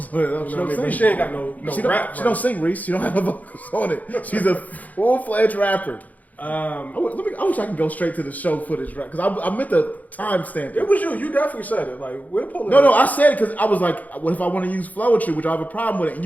on it. You She know what I don't mean? sing. But she ain't got no rap. She don't sing, Reese. She don't have no vocals on it. She's a full-fledged rapper. I wish I could go straight to the show footage, right? Because I meant the timestamp. It was you. You definitely said it. Like, we're pulling No, I said it because I was like, what if I want to use Flowetry, which I have a problem with it? And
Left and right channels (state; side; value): late; right; 0.078 ms